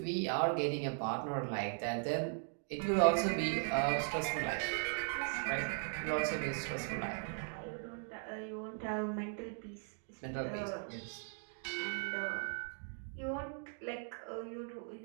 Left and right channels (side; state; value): left; silent; 52 dB below the other